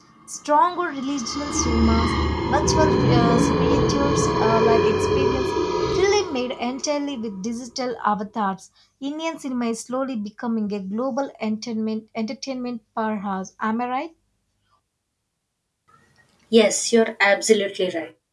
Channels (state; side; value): identical; both; correlation 1.00